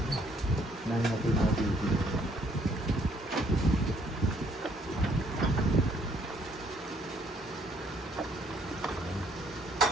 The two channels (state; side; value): normal; both; correlation 0.66